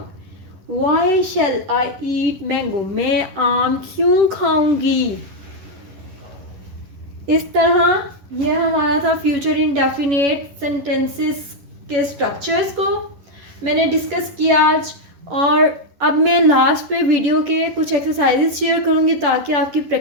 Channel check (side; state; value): left; late; 11 ms